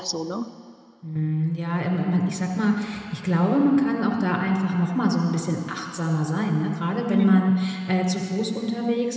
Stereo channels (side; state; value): both; identical; correlation 1.00